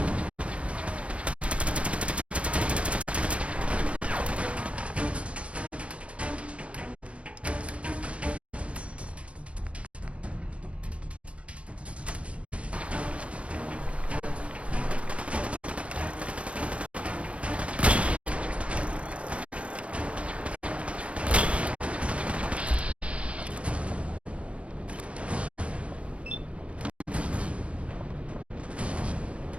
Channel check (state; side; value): late; left; 0.062 ms